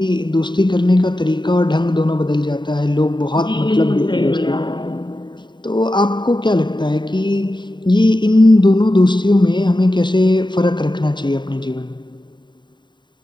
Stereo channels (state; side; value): late; right; 0.22 ms